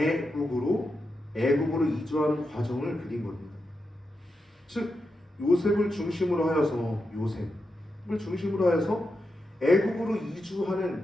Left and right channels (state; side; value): normal; both; correlation 0.87